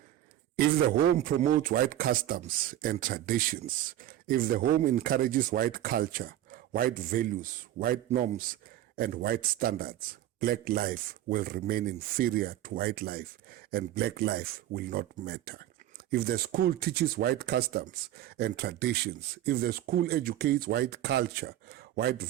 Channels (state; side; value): quieter; left; 13.0 dB